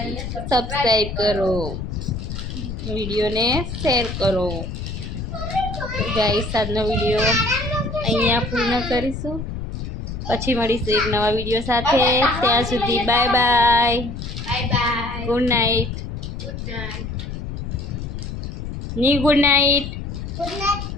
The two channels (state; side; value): noise; left; rumble, 7 dB below the sound